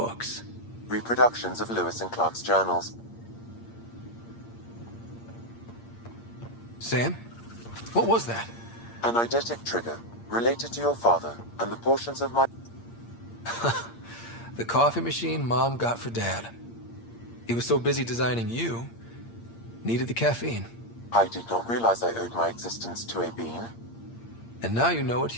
Reproductions of Lewis and Clark's journals. Sam? What was that? An eidetic trigger, related to your father, and the portions of my... The coffee machine Mom got for Dad. He was so busy designing you, needed the caffeine. I did not realize I owed my existence to a bean. And now you know what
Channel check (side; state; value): right; late; 8.6 ms